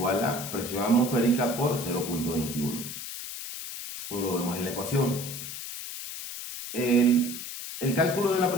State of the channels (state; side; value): noise; left; hiss, 8 dB below the sound